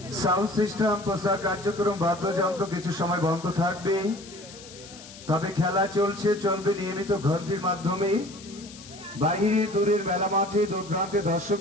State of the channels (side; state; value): left; noise; hiss, 17 dB below the sound